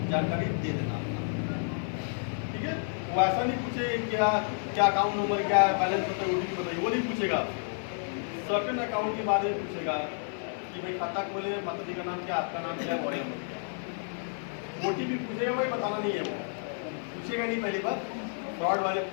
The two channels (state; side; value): silent; right; 58 dB below the other